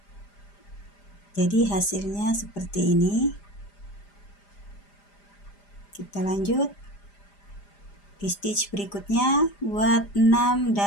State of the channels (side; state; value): right; late; 5.0 ms